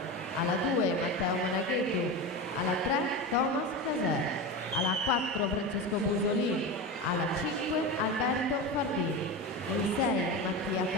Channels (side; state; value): both; normal; correlation 0.22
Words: alla 2 Matteo Monaghetu, alla 3 Thomas Caser, alla 4 Francesco Busolini, alla 5 Alberto Fardini, in 6 Mattia